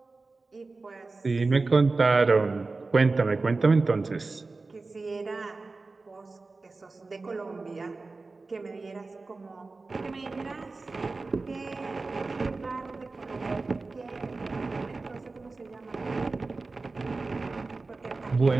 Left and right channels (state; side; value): quieter; left; 3.7 dB